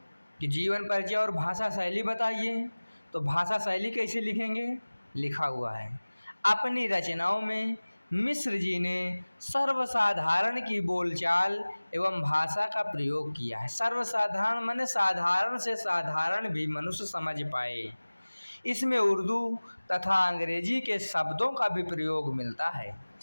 कि जीवन परिचय और भाषा शैली बताइए, तो भाषा शैली कैसे लिखेंगे, लिखा हुआ है। अपनी रचनाओं में मिश्र जी ने सर्वसाधारण की बोलचाल एवं भाषा का प्रयोग किया है। सर्वसाधारण माने साधारण से साधारण भी मनुष्य समझ पाए। इसमें उर्दू तथा अंग्रेजी के शब्दों का भी प्रयोग मिलता है।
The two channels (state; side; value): inverted; both; correlation -1.00